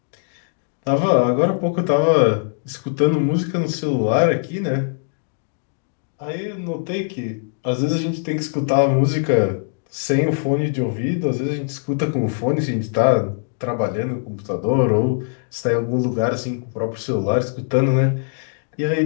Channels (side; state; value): right; silent; 65 dB below the other